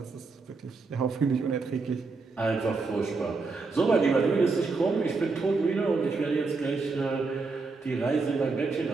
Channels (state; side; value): quieter; left; 4.0 dB